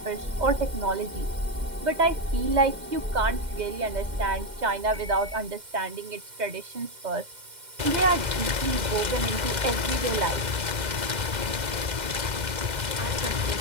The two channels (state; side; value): late; left; 2.1 ms